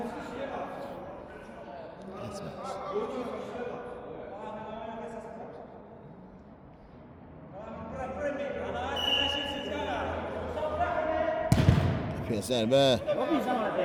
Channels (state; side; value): identical; both; correlation 1.00